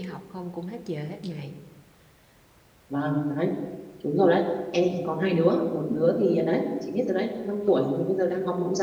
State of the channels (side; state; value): both; identical; correlation 1.00